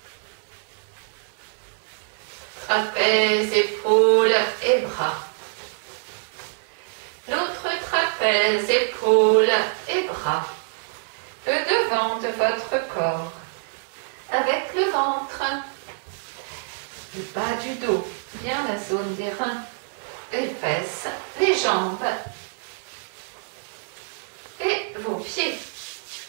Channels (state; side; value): silent; left; 62 dB below the other